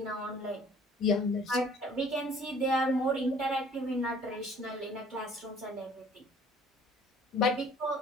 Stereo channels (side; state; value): both; normal; correlation 0.54